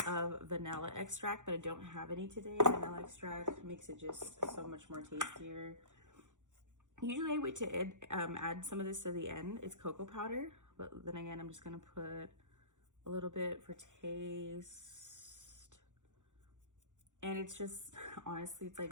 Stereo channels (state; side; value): late; left; 0.86 ms